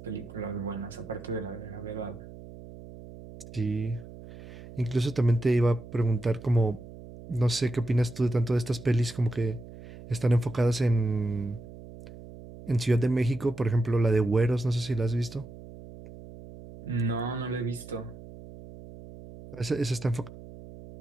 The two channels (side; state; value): right; noise; hum, 16 dB below the sound